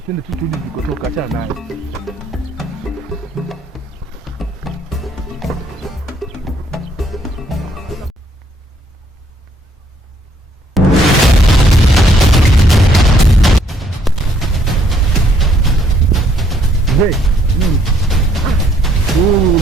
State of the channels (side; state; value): both; normal; correlation 0.68